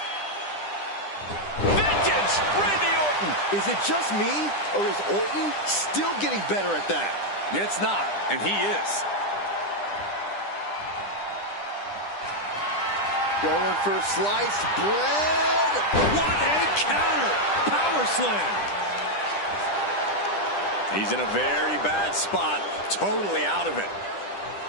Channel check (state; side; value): late; right; 10 ms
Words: Vintage Randy Orton. Is it just me, or is Orton still getting better at that? It's not, and he is. Going for sliced bread. What a counter! Power slam! He's in a very bad spot, totally out of it.